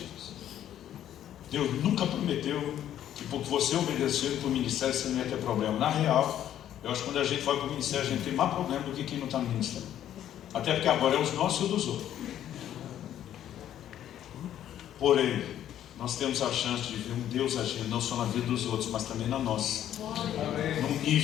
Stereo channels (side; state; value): right; quieter; 11.1 dB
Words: Deus nunca prometeu que porque você obedeceu para o ministério você não ia ter problema. Na real, eu acho que quando a gente vai para o ministério a gente tem mais problema do que quem não está no ministério. Até porque agora é os nossos e dos outros. Porém, nós temos a chance de ver um Deus agindo não só na vida dos outros, mas também na nossa. Num